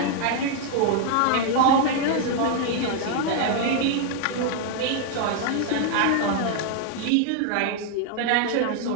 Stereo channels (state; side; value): different; both; correlation 0.00